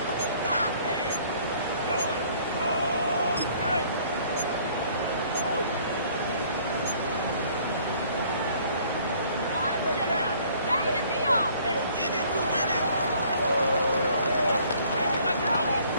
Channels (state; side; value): inverted; both; correlation -0.58